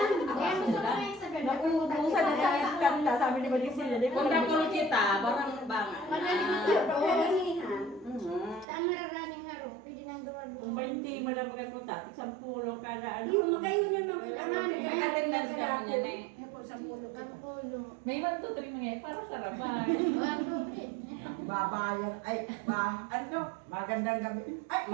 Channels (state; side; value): drops out; left; at 8.7 s